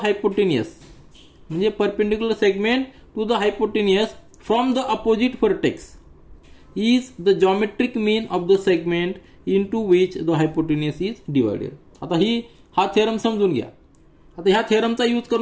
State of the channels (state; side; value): identical; both; correlation 1.00